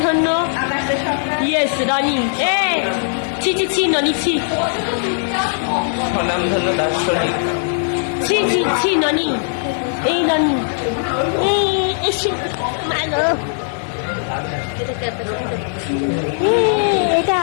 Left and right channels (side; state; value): right; silent; digital silence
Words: ইয়েস রনি। ছি ছি ছি ননি ছি ছি ছি ছি ননি। এই ননি এটা